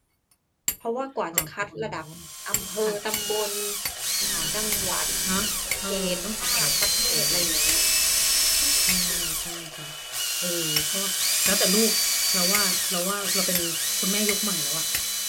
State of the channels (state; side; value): identical; both; correlation 1.00